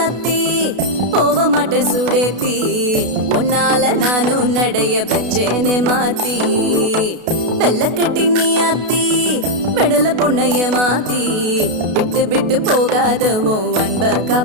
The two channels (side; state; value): left; late; 32 ms